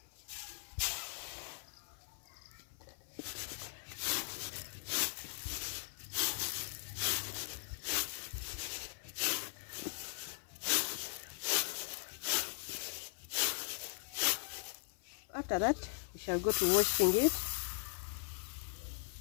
After that, we shall go to washing it.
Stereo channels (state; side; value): silent; right; 51 dB below the other